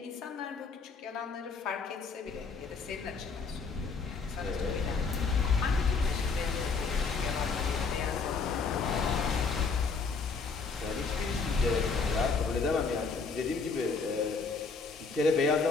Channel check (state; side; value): quieter; right; 4.7 dB